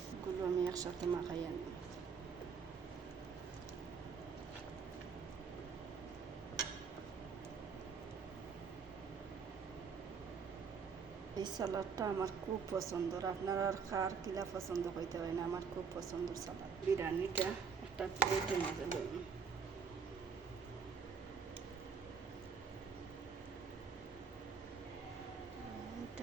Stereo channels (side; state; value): left; quieter; 5.8 dB